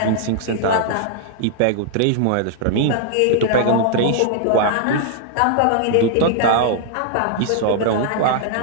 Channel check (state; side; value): different; both; correlation -0.01